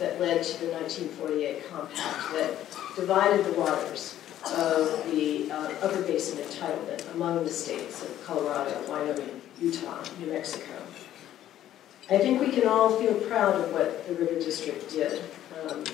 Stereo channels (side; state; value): right; quieter; 12.2 dB